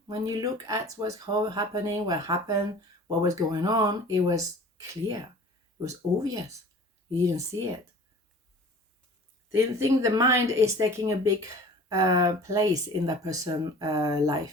when you look at what's happening, what happened, what was going on, it was clear. It was obvious. You didn't see it. They think the mind is taking a big place in that person's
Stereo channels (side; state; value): both; normal; correlation 0.44